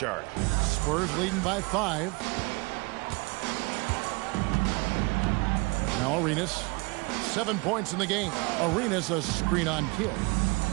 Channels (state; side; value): quieter; left; 27.9 dB